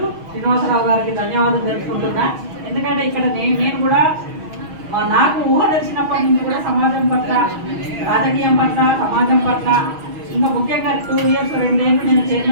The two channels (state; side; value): late; left; 6.3 ms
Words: శ్రీనివాసరావు గారికి ధన్యవాదాలు తెలుసుకుంటున్నా. ఎందుకంటే ఇక్కడ నేను కూడా నాకు ఊహ తెలిసినప్పటి నుంచి కూడా సమాజం పట్ల, రాజకీయం పట్ల, సమాజం పట్ల, ఇంకా ముఖ్యంగా 2 years 2 ఏళ్ళు నేను